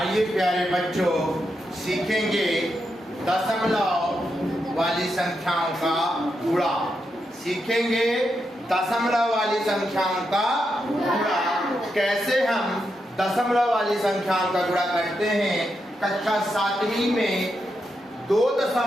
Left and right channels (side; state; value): both; normal; correlation 0.84